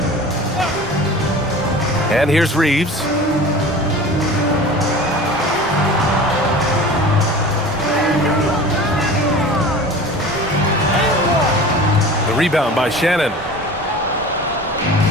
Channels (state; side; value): normal; both; correlation 0.38